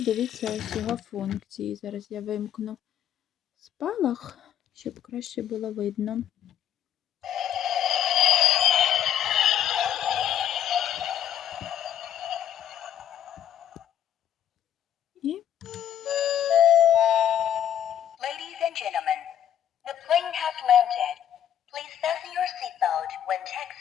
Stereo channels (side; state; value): right; quieter; 10.1 dB